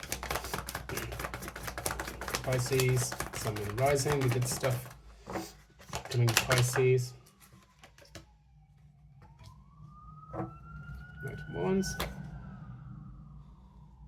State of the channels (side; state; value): both; identical; correlation 1.00